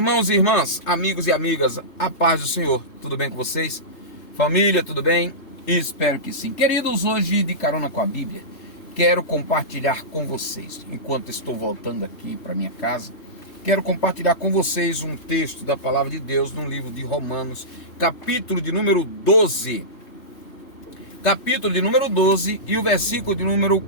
e irmãs, amigos e amigas, a paz do Senhor, tudo bem com vocês? Família, tudo bem? Espero que sim. Queridos, hoje de carona com a Bíblia, quero compartilhar com vocês, enquanto estou voltando aqui para minha casa, quero compartilhar com vocês um texto da Palavra de Deus no livro de Romanos, capítulo de número 12. Capítulo de número 12 e o versículo de número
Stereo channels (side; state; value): right; late; 3.1 ms